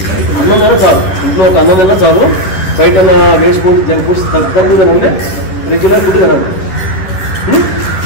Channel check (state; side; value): late; right; 10 ms